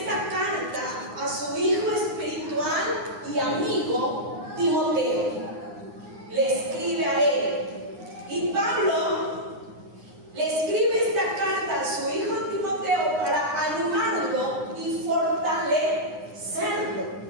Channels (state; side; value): late; left; 9.7 ms